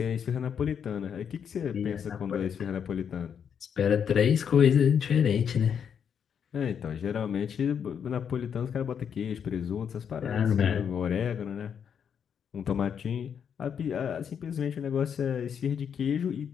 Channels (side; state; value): right; quieter; 7.7 dB